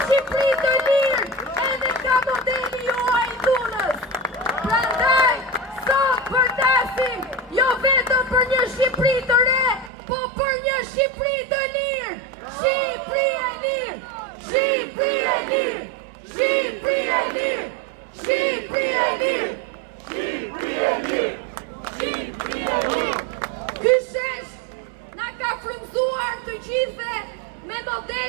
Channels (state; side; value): drops out; left; at 9.9 s